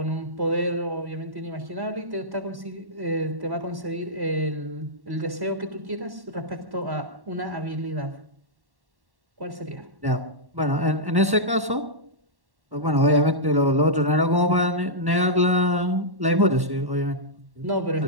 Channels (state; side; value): late; left; 1.1 ms